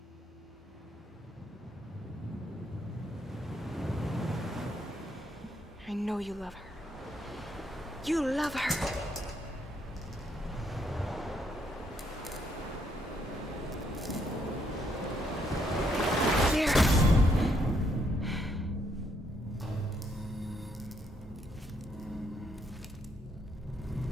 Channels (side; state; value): both; normal; correlation 0.73